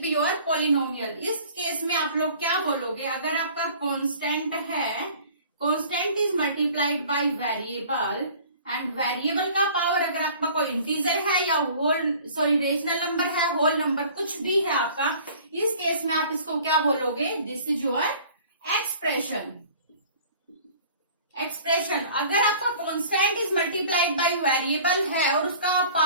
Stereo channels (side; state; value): both; inverted; correlation -0.48